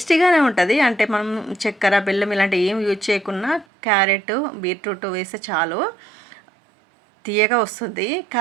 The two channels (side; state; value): left; drops out; at 3.7 s